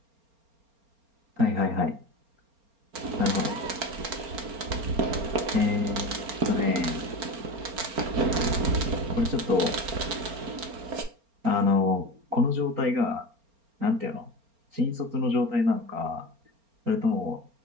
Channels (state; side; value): late; left; 4.3 ms